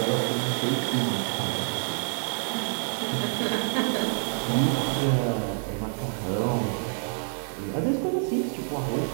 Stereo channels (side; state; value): left; silent; digital silence